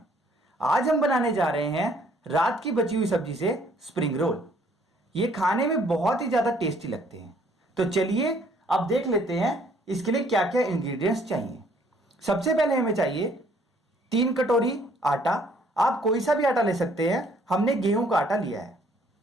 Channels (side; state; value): both; normal; correlation 0.62